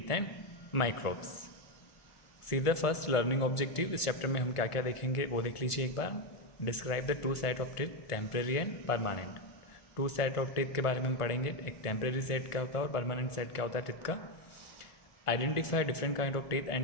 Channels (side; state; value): right; late; 1.5 ms